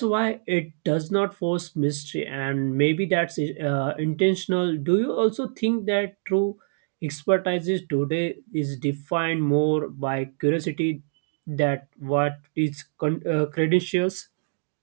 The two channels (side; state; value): left; silent; digital silence